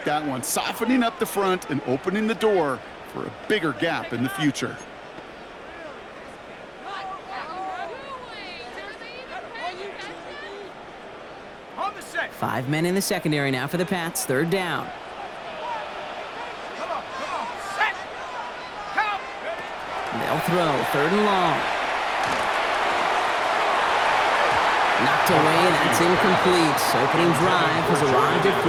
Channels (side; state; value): both; identical; correlation 1.00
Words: that one, softening up the front and opening the door for a bigger gap in the future. Five men in the secondary now for the Pats. 3rd down. They'll throw. 3rd and long. Knocked away. That's incomplete. Opening drive has arrived at